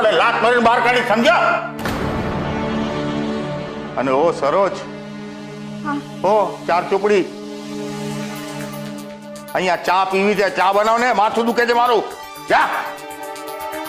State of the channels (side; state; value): both; identical; correlation 1.00